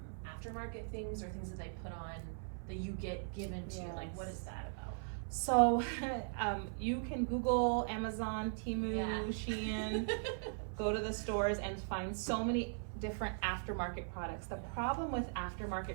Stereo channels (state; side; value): silent; left; 52 dB below the other